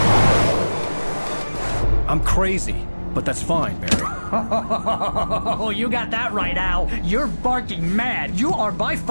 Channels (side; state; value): both; inverted; correlation -1.00